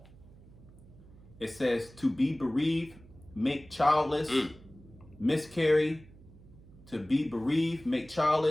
It says to be bereaved, make childless, miscarry, to be bereaved, make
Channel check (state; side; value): noise; right; hum, 22 dB below the sound